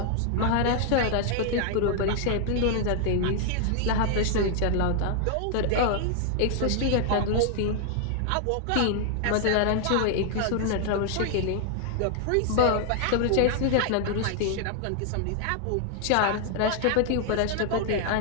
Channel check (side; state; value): both; different; correlation 0.00